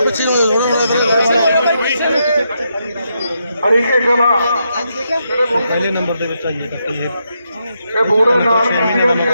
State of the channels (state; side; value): inverted; both; correlation -0.81